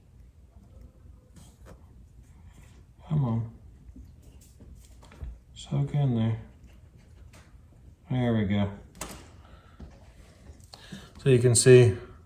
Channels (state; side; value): identical; both; correlation 1.00